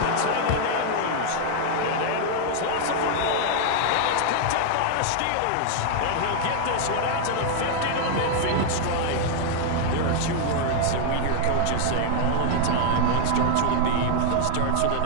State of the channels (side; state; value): both; different; correlation 0.00